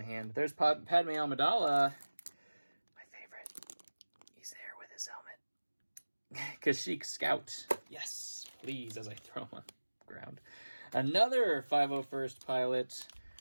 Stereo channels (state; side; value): inverted; both; correlation -1.00